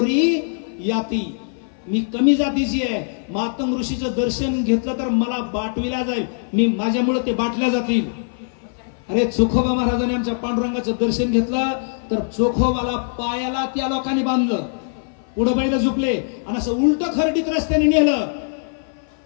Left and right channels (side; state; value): right; silent; 57 dB below the other